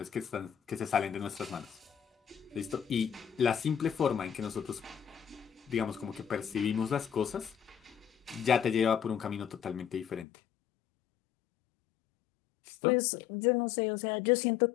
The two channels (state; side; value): drops out; right; at 10.2 s